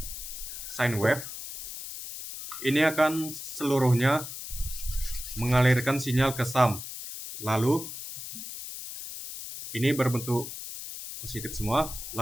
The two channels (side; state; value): left; noise; hiss, 9 dB below the sound